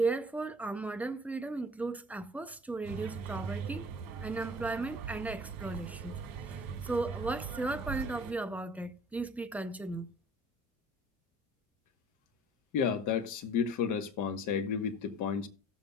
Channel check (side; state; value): both; normal; correlation 0.48